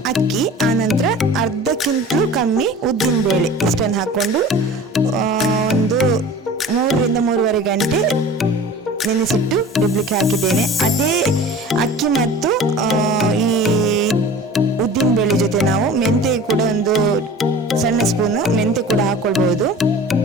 ಅಕ್ಕಿ, ಆನಂತರ ಅರ್ಧಕ್ಕಿಂತಲೂ ಕಮ್ಮಿ ಉದ್ದಿನ ಬೇಳೆ, ಇಷ್ಟನ್ನು ಹಾಕೊಂಡು ಒಂದು 3 ರಿಂದ 3.5 ಗಂಟೆ ನೆನೆಸಿಟ್ಟು ರುಬ್ಲಿಕ್ಕೆ ಹಾಕಿದ್ದೇನೆ. ಅದೇ ಅಕ್ಕಿ ಮತ್ತು ಈ ಉದ್ದಿನ ಬೇಳೆ ಜೊತೆ ನಾವು ಮೆಂತೆ ಕೂಡ ಒಂದು ಸಣ್ಣ ಸ್ಪೂನು ಮೆಂತೆ ಕೂಡ ಹಾಕೊಳ್ಬಹುದು.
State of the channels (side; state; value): both; normal; correlation 0.40